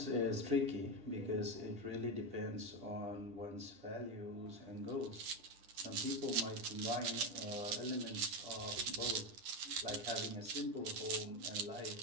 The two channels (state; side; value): late; left; 10 ms